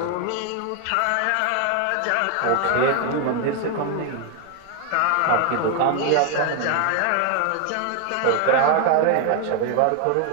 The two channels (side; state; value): both; different; correlation 0.00